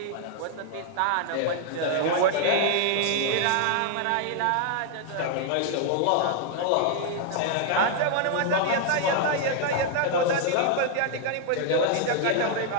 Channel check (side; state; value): both; different; correlation 0.00